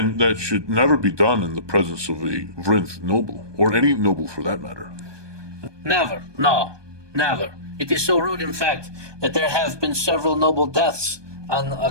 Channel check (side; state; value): left; late; 1.2 ms